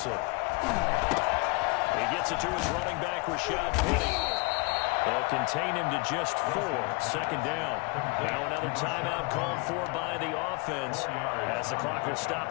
He gets it to his running back, Rashad Penny. They'll contain him to just 4. 2nd down. Now another timeout called for by the offense as the clock will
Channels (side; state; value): right; quieter; 28.3 dB